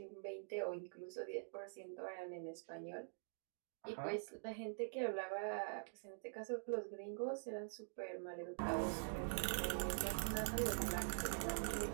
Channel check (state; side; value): silent; left; digital silence